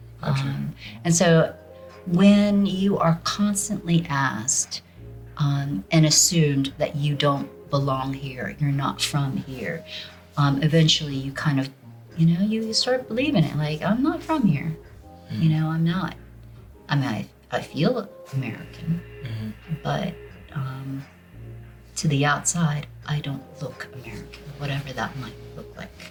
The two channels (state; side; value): identical; both; correlation 1.00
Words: And so when you are constantly asked and assumed that you don't belong here, you're not from here, eventually you kind of, you know, you start believing it. Like, I'm not from here. You know, I'm not. I mean, I feel American, but to the outside, I don't look American, whatever that might look